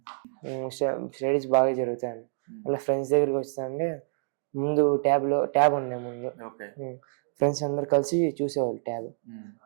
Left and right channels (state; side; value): silent; left; digital silence